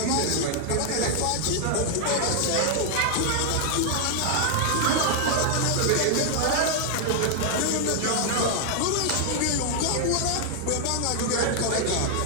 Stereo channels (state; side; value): different; both; correlation 0.00